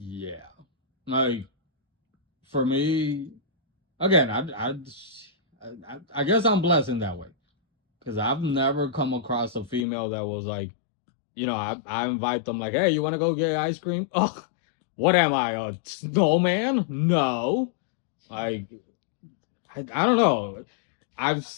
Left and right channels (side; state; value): right; drops out; at 9.9 s